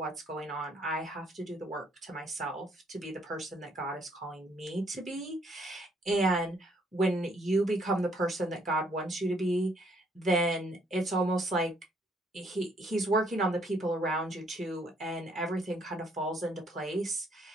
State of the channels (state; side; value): normal; both; correlation 0.67